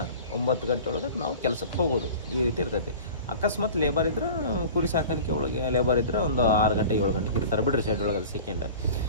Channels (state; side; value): inverted; both; correlation -0.40